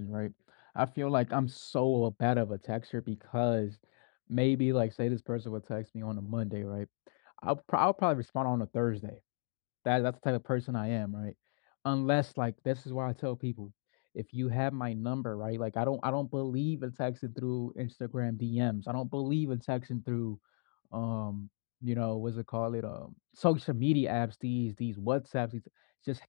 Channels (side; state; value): right; silent; 54 dB below the other